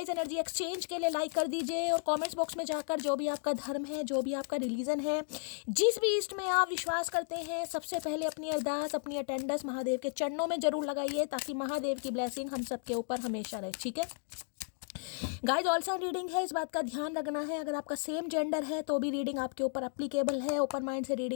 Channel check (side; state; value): right; silent; 55 dB below the other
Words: एनर्जी एक्सचेंज के लिए लाइक कर दीजिए और कमेंट्स बॉक्स में जाकर जो भी आपका धर्म है, जो भी आपका रिलीजन है, जिस भी ईस्ट में आप विश्वास करते हैं, सबसे पहले अपनी अरदास, अपनी अटेंडेंस महादेव के चरणों में जरूर लगाइए, ताकि महादेव की ब्लेसिंग हम सबके ऊपर हमेशा रहे. ठीक है गाइज, ऑल साइन रीडिंग है, इस बात का ध्यान रखना है. अगर आपका सेम जेंडर है तो भी रीडिंग आपके ऊपर एप्लीकेबल है. ओपन माइंड से